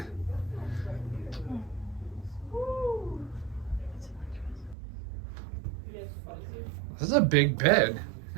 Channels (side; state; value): left; drops out; at 4.8 s